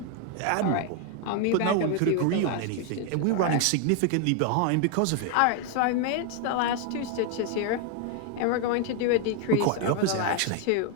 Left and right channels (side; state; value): both; different; correlation 0.00